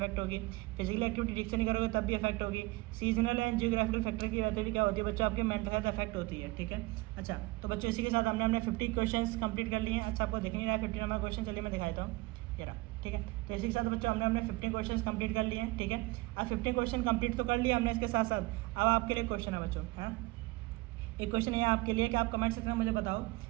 होगी, फिजिकल एक्टिविटी ठीक से नहीं करोगे तब भी अफेक्ट होगी, सीजनल एंड जियोग्राफिकल फैक्टर की वजह से भी क्या होती है बच्चों, आपकी मेंटल हेल्थ अफेक्ट होती है, ठीक है। अच्छा तो बच्चों इसी के साथ हमने 50 क्वेश्चन कंप्लीट कर लिए हैं। अच्छा आपको दिख नहीं रहा है 50 नंबर क्वेश्चन, चलिए मैं दिखाता हूँ, ये रहा, ठीक है। तो इसी के साथ बच्चों हमने 50 क्वेश्चन कंप्लीट कर लिए हैं, ठीक है। अब 50 क्वेश्चन कंप्लीट तो कर लिया हमने, इसके साथ साथ अब आपके लिए क्वेश्चन है बच्चों, है एक क्वेश्चन है आपके लिए कि आप कमेंट सेक्शन में मुझे बताओ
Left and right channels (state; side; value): quieter; left; 22.1 dB